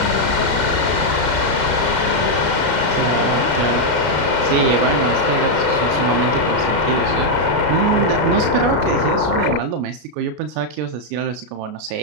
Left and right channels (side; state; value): left; late; 33 ms